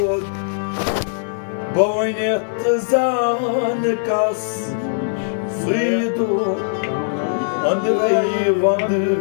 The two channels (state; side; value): silent; right; digital silence